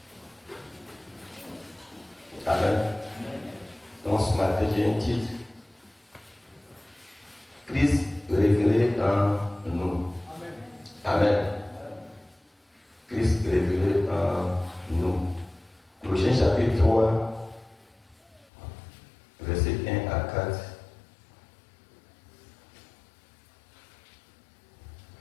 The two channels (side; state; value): right; drops out; at 18.4 s